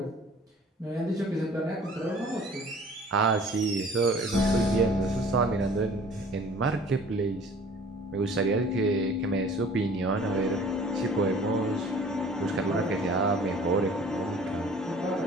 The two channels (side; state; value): both; normal; correlation 0.49